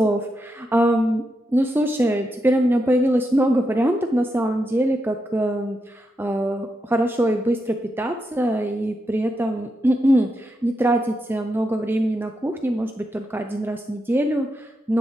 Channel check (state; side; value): normal; both; correlation 0.84